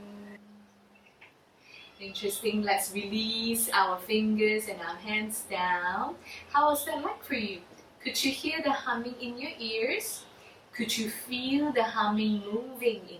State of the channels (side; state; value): both; identical; correlation 1.00